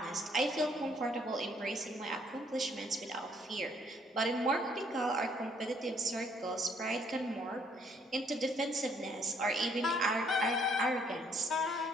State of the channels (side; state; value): both; normal; correlation 0.65